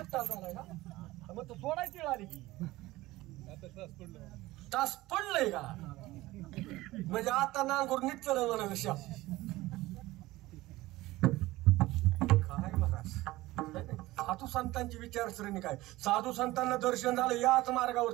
तास झालाय ना. मग तो सोडायची वेळ आली की तास पडलंय का? म्हणजे आता नांगूर नीट चल म्हणा विषय काय बघा. साधू संतांची विचारसरणी काय? साधू संतांना दर्शन झालं याच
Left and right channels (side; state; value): left; quieter; 18.4 dB